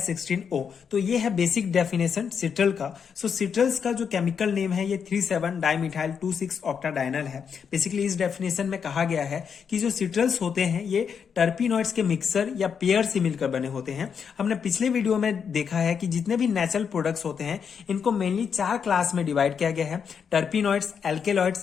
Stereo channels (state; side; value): quieter; right; 6.8 dB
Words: तो ये है बेसिक डेफिनेशन सिट्रल का। सो सिट्रल्स का जो केमिकल नेम है ये 37 डाइमिथाइल 2,6 ऑक्टाडाइनल है। बेसिकली इस डेफिनेशन में कहा गया है कि जो सिट्रल्स होते हैं ये टर्पिनॉइड्स के मिक्सर या पेयर से मिलकर बने होते हैं। हमने पिछले वीडियो में देखा है कि जितने भी नेचुरल प्रोडक्ट्स होते हैं इनको मेनली 4 क्लास में डिवाइड किया गया है: terpenoids,